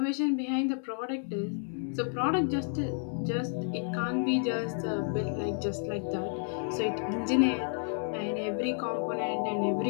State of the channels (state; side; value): silent; right; 57 dB below the other